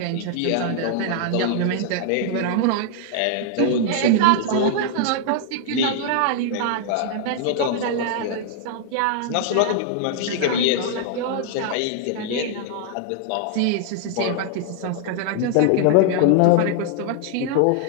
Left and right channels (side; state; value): both; different; correlation 0.00